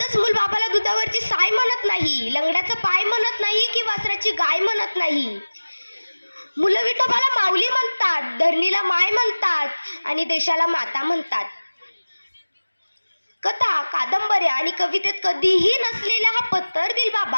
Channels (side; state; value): both; inverted; correlation -1.00